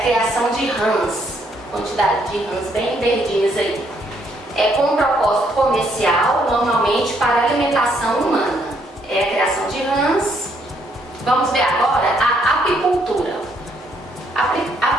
criação de rãs, quantidade de rãs bem verdinhas aí. Com um propósito comercial, normalmente para alimentação humana. É a criação de rãs. Vamos ver agora a apicultura. A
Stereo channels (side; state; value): both; normal; correlation 0.71